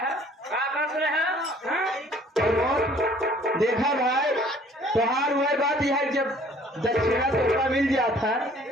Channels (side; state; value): both; normal; correlation 0.56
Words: क्या कर रहे हैं। देखा भाई त्योहार हुआ बात यह है, जब दक्षिणा तोहफा मिल जाता,